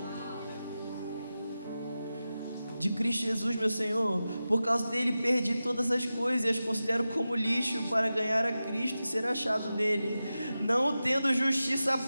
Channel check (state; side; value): inverted; both; correlation -0.93